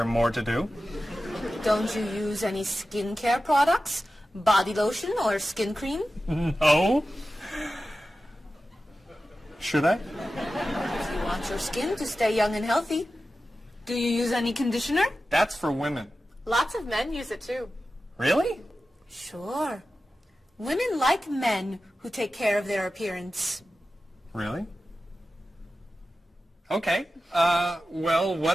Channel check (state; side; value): normal; both; correlation 0.93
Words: more to do? Don't you use any skincare products? Body lotion or skin cream? No. Should I? If you want your skin to stay young and healthy. Do you use any conditioner? That's for women. Lots of men use it too. Really? Sure. Women like men who take care of their appearance. Really? Okay. Well,